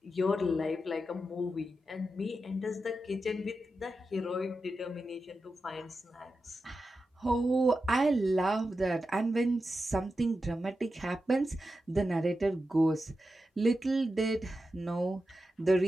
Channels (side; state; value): both; normal; correlation 0.90